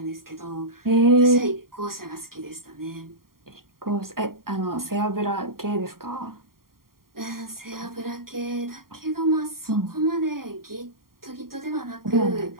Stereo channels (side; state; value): left; late; 0.92 ms